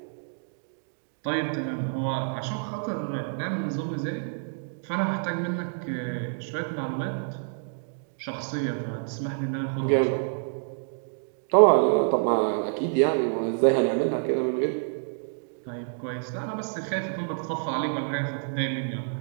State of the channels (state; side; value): silent; left; digital silence